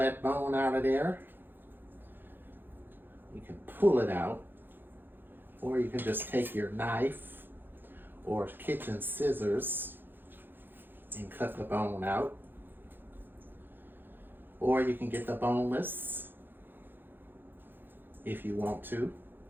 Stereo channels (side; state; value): left; late; 0.097 ms